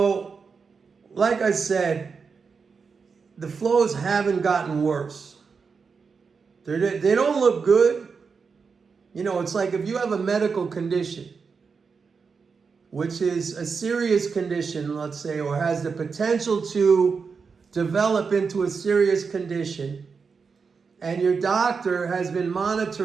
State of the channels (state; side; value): quieter; left; 5.3 dB